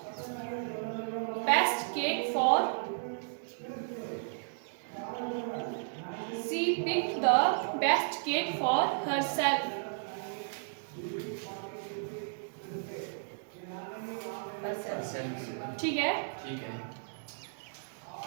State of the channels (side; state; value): left; silent; digital silence